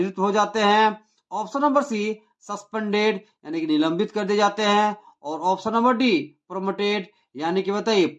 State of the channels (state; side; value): identical; both; correlation 1.00